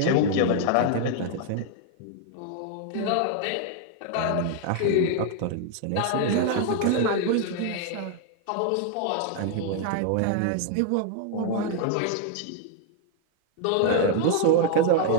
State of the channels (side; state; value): both; different; correlation 0.00